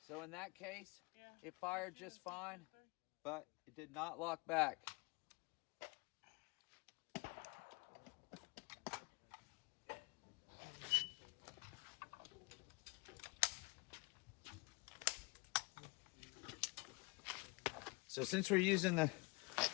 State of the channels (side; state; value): right; quieter; 27.7 dB